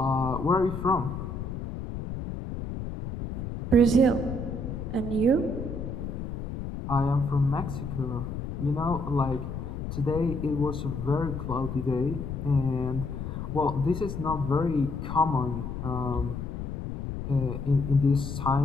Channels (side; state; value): left; noise; rumble, 6 dB below the sound